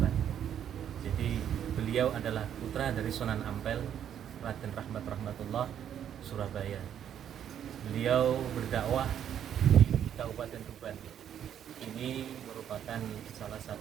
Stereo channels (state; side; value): quieter; left; 9.6 dB